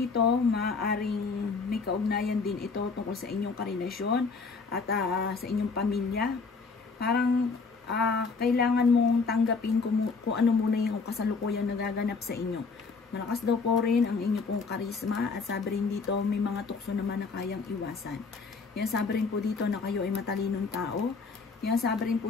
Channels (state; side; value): quieter; right; 4.6 dB